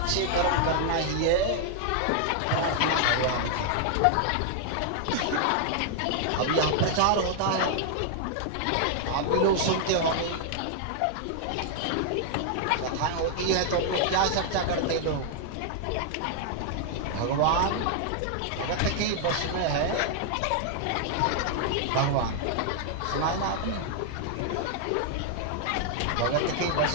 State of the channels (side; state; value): both; different; correlation 0.00